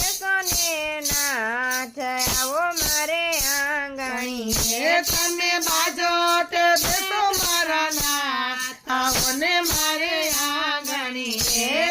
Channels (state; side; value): identical; both; correlation 1.00